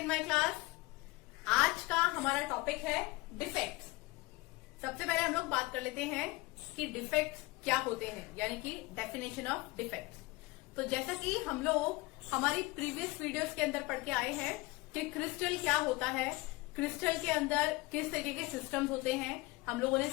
my class. आज का हमारा टॉपिक है डिफेक्ट्स। सबसे पहले हम लोग बात कर लेते हैं कि डिफेक्ट्स क्या होते हैं, यानी कि डेफिनेशन ऑफ डिफेक्ट्स। तो जैसा कि हम लोग हमारी प्रीवियस वीडियोस के अंदर पढ़ के आए हैं कि क्रिस्टल क्या होता है, क्रिस्टल के अंदर किस तरीके के सिस्टम्स होते हैं। हम लोगों ने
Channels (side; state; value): right; quieter; 22.6 dB